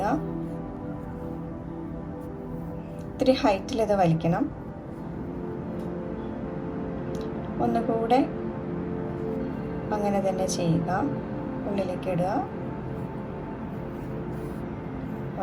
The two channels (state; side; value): identical; both; correlation 1.00